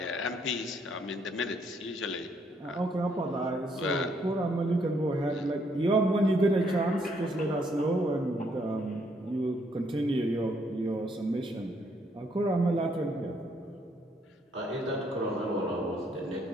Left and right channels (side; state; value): both; normal; correlation 0.70